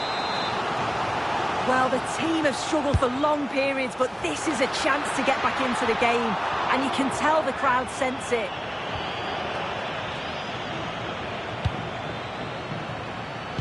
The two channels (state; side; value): identical; both; correlation 1.00